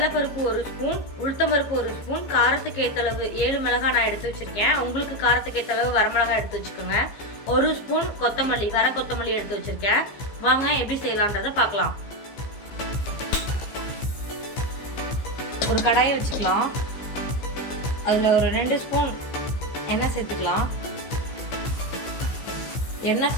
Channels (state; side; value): late; right; 15 ms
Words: 1 ஸ்பூன், உளுத்தம்பருப்பு 1 ஸ்பூன், காரத்துக்கு ஏற்றளவு 7 மிளகாய் நான் எடுத்து வச்சுருக்கேன். உங்களுக்கு காரத்துக்கு ஏற்றளவு வரமிளகாய் எடுத்து வச்சுக்கோங்க. 1 ஸ்பூன் கொத்தமல்லி, வர கொத்தமல்லி எடுத்து வச்சுருக்கேன். வாங்க எப்படி செய்யலான்றதை பார்க்கலாம். ஒரு கடாயை வச்சுக்கலாம். அதில் ஒரு 2 ஸ்பூன் எண்ணெய் சேர்த்துக்கலாம். எண்ணெய்